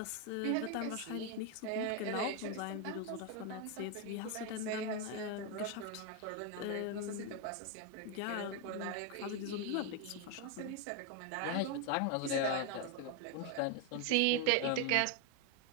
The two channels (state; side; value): different; both; correlation 0.01